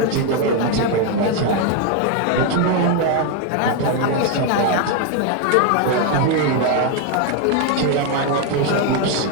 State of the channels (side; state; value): both; different; correlation 0.01